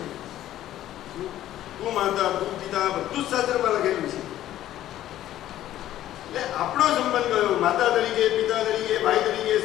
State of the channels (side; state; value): right; quieter; 13.0 dB